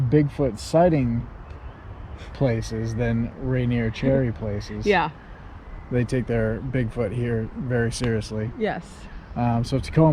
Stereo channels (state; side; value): identical; both; correlation 1.00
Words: Bigfoot sighting places than Rainier cherry places. Yeah. They take their Bigfoot here very seriously. Yes. So